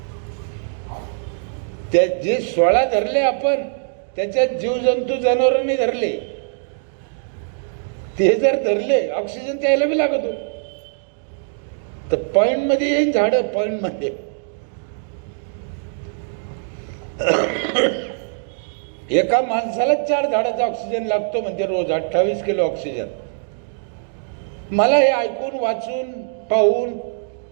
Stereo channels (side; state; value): left; silent; digital silence